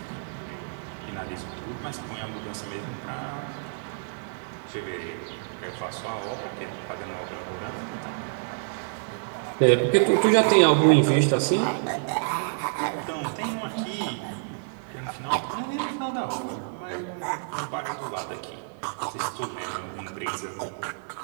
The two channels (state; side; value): silent; left; digital silence